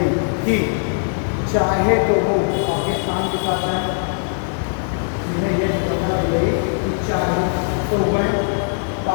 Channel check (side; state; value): right; silent; digital silence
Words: थी। चाहे तो वो पाकिस्तान के साथ है, जिन्हें यह स्वतंत्रता दी गई कि चाहे तो वह